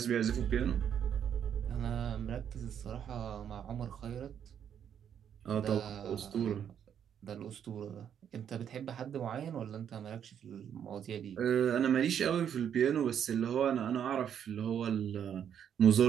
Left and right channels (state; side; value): quieter; left; 8.8 dB